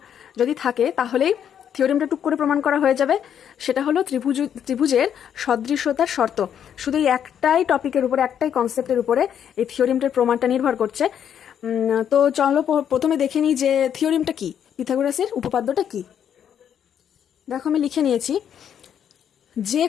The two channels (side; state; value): right; quieter; 9.0 dB